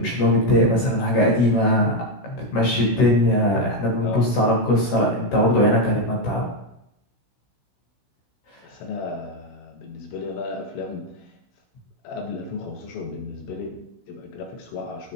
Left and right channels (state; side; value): late; right; 16 ms